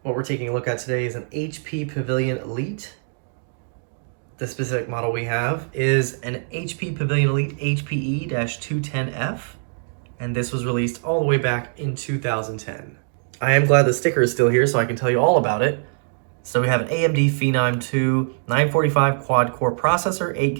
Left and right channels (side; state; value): left; silent; digital silence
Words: What we're taking a look at today is an HP Pavilion Elite. The specific model we have is an HP Pavilion Elite HPE-210f, and this was released all the way back in 2010. I am glad the sticker is still here so I can tell you all about it. So we have an AMD Phenom II 945 quad-core processor, 8